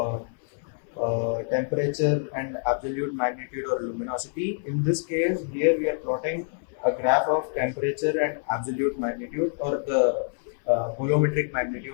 temperature and absolute magnitude or luminosity. In this case, here we are plotting a graph of temperature and absolute magnitude, or the bolometric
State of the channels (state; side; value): silent; right; 61 dB below the other